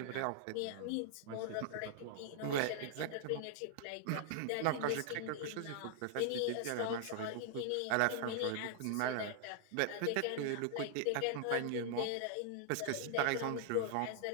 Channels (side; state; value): both; different; correlation -0.01